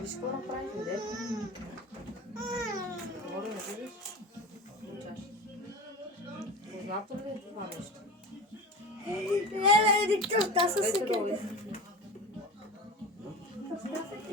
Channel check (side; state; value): both; normal; correlation 0.30